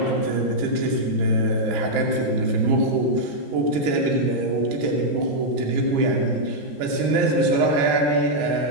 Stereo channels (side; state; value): left; late; 13 ms